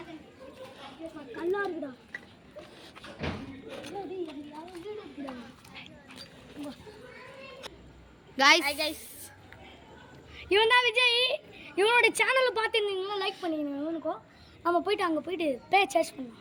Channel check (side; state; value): both; identical; correlation 1.00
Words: நல்லா இருக்குடா. guys இவன் தான் விஜய். இவனோட சேனலை பார்த்துருந்தீங்கன்னா லைக் பண்ணிக்கணும். இவனுக்கும் நம்ம போயிட்டு அங்கே போயிட்டு பே சர்ச் பண்ணலாம்.